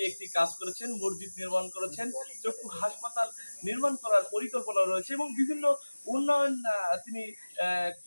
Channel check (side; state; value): both; inverted; correlation -1.00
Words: কাজ করেছেন, মসজিদ নির্মাণ করেছেন, চক্ষু হাসপাতাল নির্মাণ করার পরিকল্পনা রয়েছে এবং বিভিন্ন উন্নয়ন তিনি